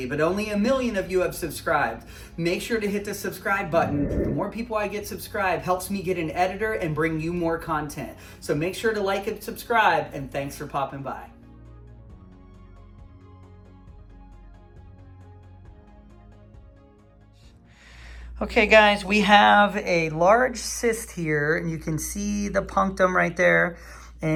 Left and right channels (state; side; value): identical; both; correlation 1.00